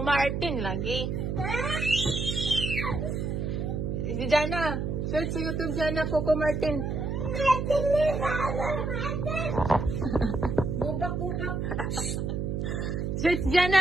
Martin lagi. Si Jana, search sa YouTube Jana, Coco Martin. Bubak. Search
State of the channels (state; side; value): noise; right; hum, 2 dB below the sound